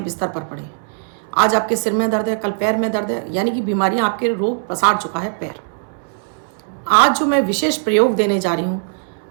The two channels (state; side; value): silent; left; 66 dB below the other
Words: बिस्तर पर पड़े हैं। आज आपके सिर में दर्द है, कल पैर में दर्द है, यानी कि बीमारियां आपके रोग पसार चुका है पैर। आज जो मैं विशेष प्रयोग देने जा रही हूँ,